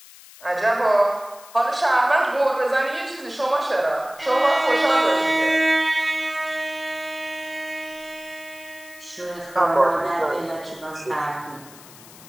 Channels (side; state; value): left; noise; hiss, 20 dB below the sound